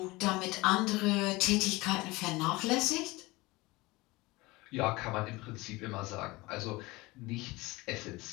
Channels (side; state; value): right; quieter; 22.0 dB